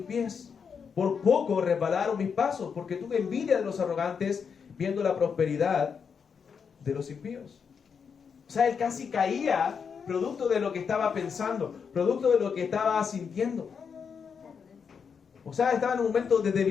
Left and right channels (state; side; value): quieter; right; 6.4 dB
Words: pies, por poco resbalaron mis pasos, porque tuve envidia de los arrogantes, viendo la prosperidad de los impíos. O sea, él casi caía producto de lo que estaba pensando, producto de lo que estaba sintiendo. O sea, estaba en un momento de